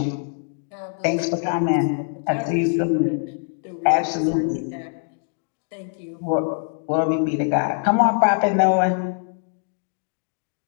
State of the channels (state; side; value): silent; right; 61 dB below the other